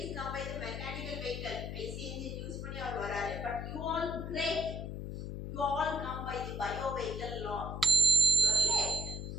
is come by the mechanical vehicle. IC engine use பண்ணி அவர் வராரு. But you all great. You all come by the bio vehicle law. By using your leg.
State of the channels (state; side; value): noise; left; hum, 6 dB below the sound